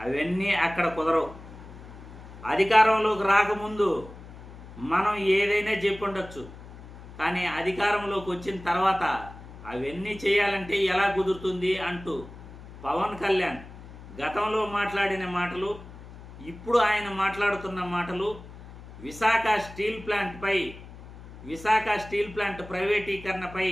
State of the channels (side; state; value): left; noise; hum, 16 dB below the sound